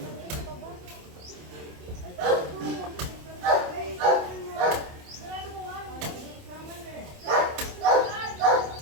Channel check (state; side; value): late; left; 27 ms